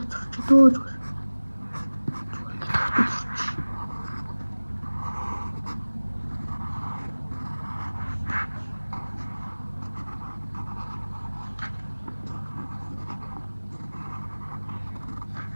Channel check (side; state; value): both; inverted; correlation -1.00